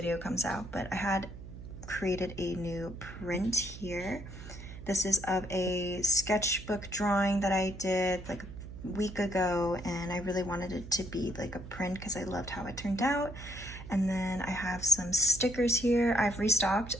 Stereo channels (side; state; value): right; noise; hum, 13 dB below the sound